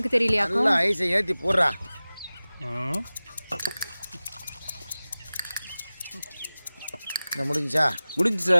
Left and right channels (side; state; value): both; inverted; correlation -0.97